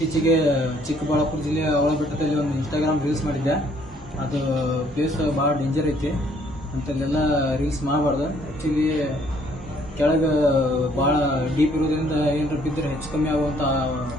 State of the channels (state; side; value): normal; both; correlation 0.64